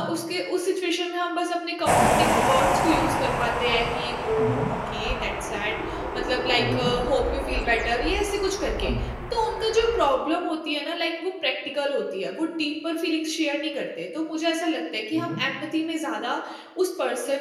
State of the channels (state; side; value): identical; both; correlation 1.00